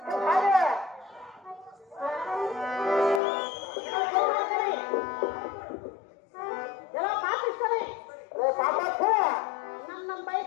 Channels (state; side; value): drops out; right; at 3.2 s